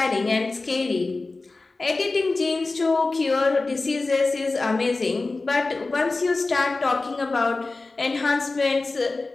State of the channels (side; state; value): right; quieter; 3.5 dB